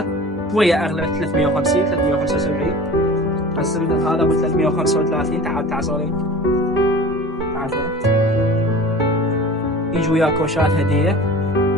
شويه اغلى، 350 375، بس هذا ابو 335. تعال صوري. تعال صوري. يجي وياك كوشات هديه.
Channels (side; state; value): both; normal; correlation 0.39